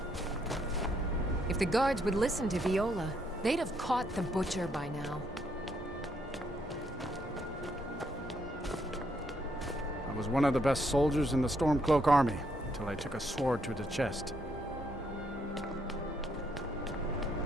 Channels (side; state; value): both; normal; correlation 0.74